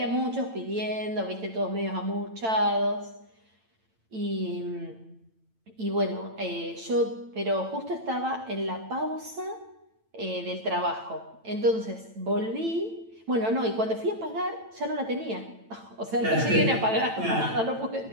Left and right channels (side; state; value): left; late; 9.0 ms